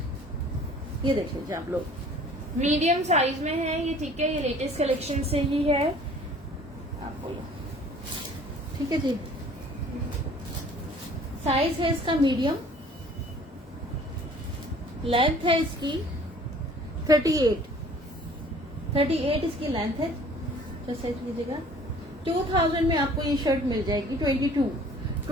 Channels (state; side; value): normal; both; correlation 0.51